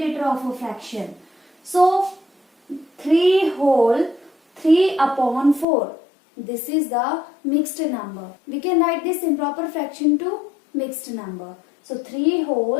of a fraction. So 3 whole, 3 upon 4. This is the mixed number. We can write this improper fraction to mixed number. So 3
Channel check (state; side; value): drops out; right; at 5.7 s